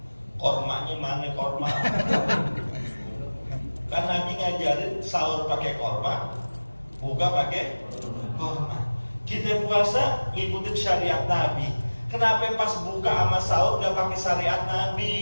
Kormanya mana korma? Kan Nabi ngajarin sahur pakai korma, buka pakai korma. Kita puasa ngikutin syariat Nabi. Kenapa pas buka sama sahur gak pakai syariat Nabi?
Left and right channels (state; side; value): inverted; both; correlation -1.00